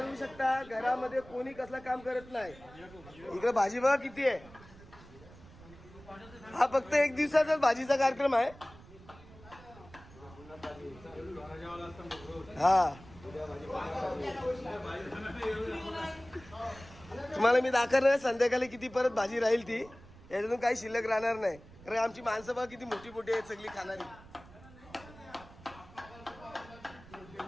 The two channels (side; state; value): right; noise; rumble, 20 dB below the sound